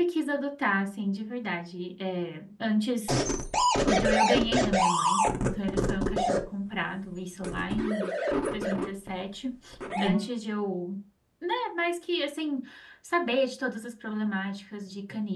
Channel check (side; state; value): both; identical; correlation 1.00